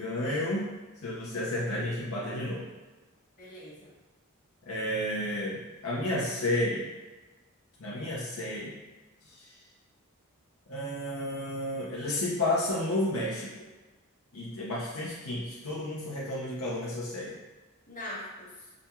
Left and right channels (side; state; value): both; normal; correlation 0.20